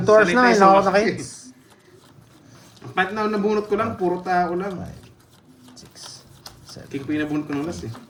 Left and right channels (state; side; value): identical; both; correlation 1.00